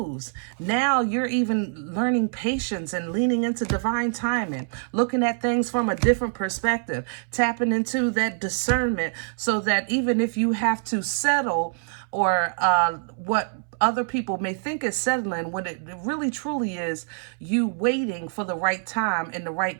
Now you're even learning patience and leaning into divine timing, looking at things from a different perspective, tapping into that discernment, so that even if you have to settle, or what other people may think is settling, when it really truly is you waiting for the right time in the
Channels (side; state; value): left; silent; 62 dB below the other